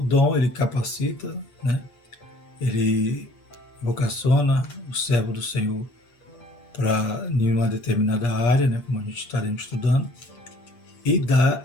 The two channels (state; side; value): late; right; 8.5 ms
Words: ele capacita, né, ele vocaciona o servo do Senhor para nenhuma determinada área, né, como a gente estaremos estudando, e dá